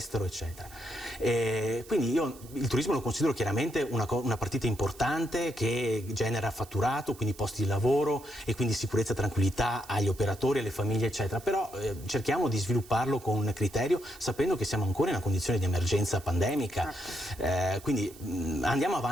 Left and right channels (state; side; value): noise; right; hiss, 21 dB below the sound